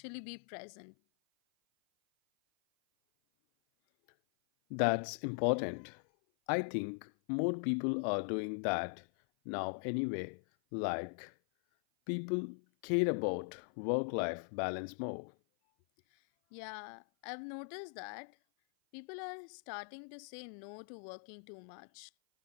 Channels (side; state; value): right; silent; 51 dB below the other